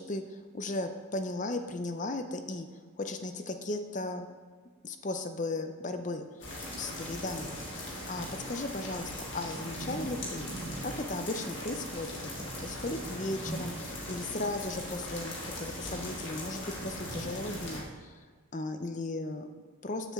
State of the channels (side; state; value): both; normal; correlation 0.32